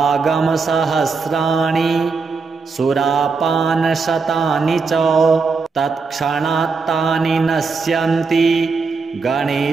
सुरापानशतानि च तत्क्षणात्तानि नश्यन्ति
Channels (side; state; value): left; quieter; 4.6 dB